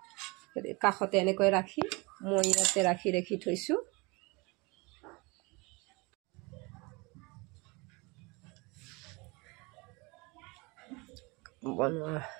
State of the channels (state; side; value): quieter; left; 26.7 dB